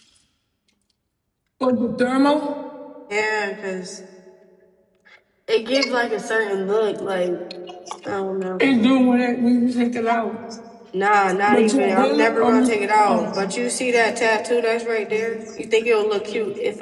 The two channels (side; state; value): both; identical; correlation 1.00